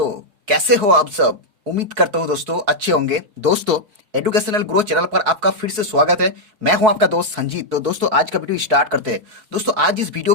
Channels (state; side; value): late; left; 4.6 ms